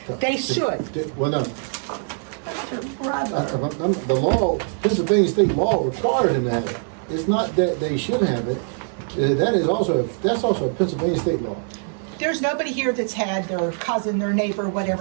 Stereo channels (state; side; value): silent; left; 58 dB below the other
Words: They should. Well, no, brother. the law, Pennsylvania state law requires them to have it. It's not that they should have it. That's also a Pennsylvania state law. There's nobody here that's had their cousin, their neighbor,